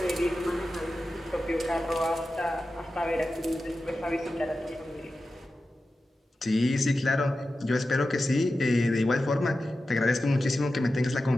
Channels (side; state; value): both; normal; correlation 0.93